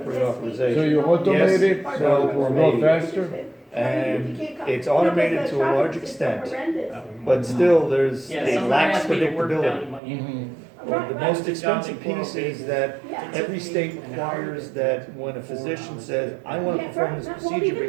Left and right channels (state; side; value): drops out; left; at 10.0 s